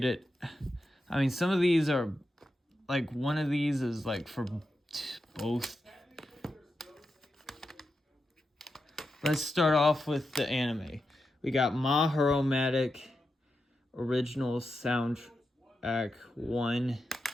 it. I mean, some of these are like, one of these is like for both. Let's start off with the anime. We got Maharomatic Original Soundtrack 1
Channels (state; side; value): normal; both; correlation 0.88